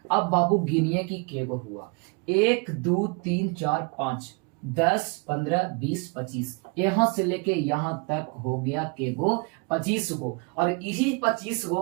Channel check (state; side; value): quieter; left; 31.6 dB